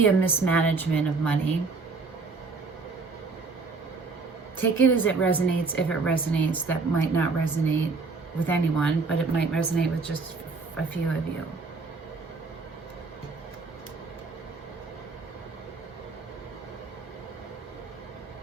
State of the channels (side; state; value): left; quieter; 4.2 dB